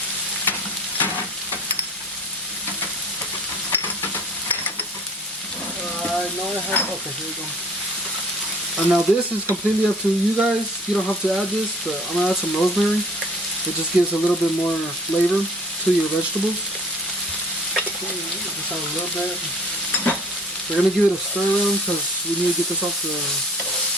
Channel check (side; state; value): both; normal; correlation 0.52